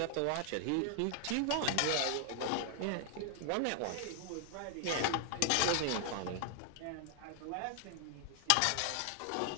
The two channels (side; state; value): both; different; correlation 0.00